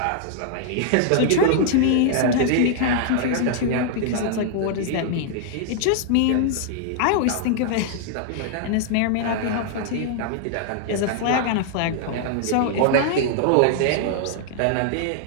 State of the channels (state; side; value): different; both; correlation -0.01